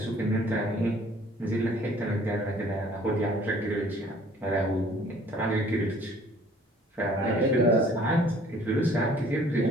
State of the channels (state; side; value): normal; both; correlation 0.55